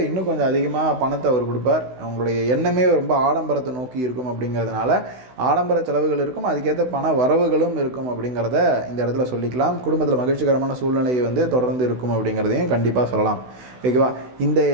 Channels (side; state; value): left; late; 16 ms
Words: இன்னும் கொஞ்சம் அதிகமாக பணத்தை அவர் கொடுப்பார். உங்களுடைய எண்ணமே ரொம்ப ஆடம்பரத்தை நோக்கி இருக்கும் அப்படிங்கிறதுனால ஆடம்பர செலவுகள் இருக்கும், அதுக்கேற்ற பண வரவுகளும் இருக்கும் அப்படிங்கிறத இந்த இடத்துல சொல்லிக்கலாம். குடும்பத்தில் மகிழ்ச்சிகரமான சூழ்நிலை வந்து தொடர்ந்து இருக்கும் அப்படிங்கிறதையும் கண்டிப்பாக சொல்லலாம். ஓகேவா? இந்த